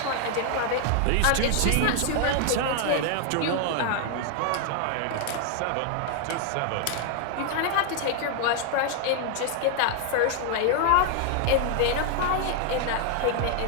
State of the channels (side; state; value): both; different; correlation 0.00